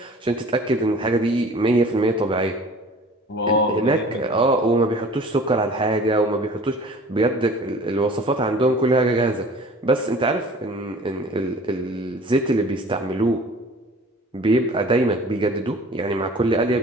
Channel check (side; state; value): both; normal; correlation 0.46